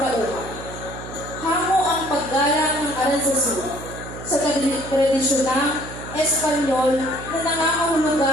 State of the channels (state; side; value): noise; right; hum, 12 dB below the sound